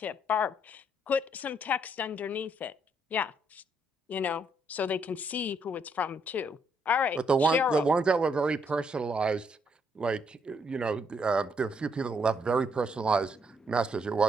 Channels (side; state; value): both; normal; correlation 0.73